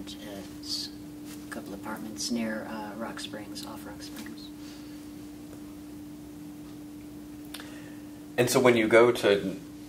a couple apartments near Rock Springs, off Rock Springs. And so when you go to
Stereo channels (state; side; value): identical; both; correlation 1.00